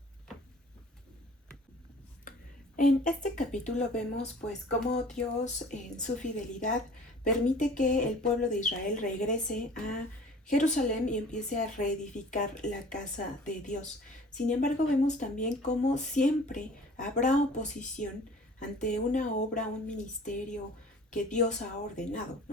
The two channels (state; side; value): normal; both; correlation 0.47